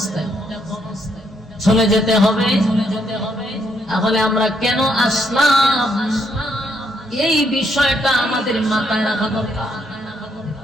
চলে যেতে হবে। তাহলে আমরা কেন আসলাম, এই বিষয়টা আমাদের মাথায় রাখা দরকার।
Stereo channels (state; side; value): normal; both; correlation 0.74